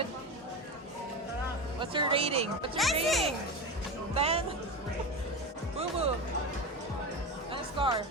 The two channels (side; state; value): both; normal; correlation 0.22